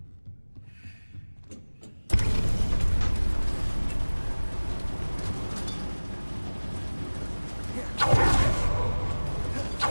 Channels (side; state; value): both; inverted; correlation -1.00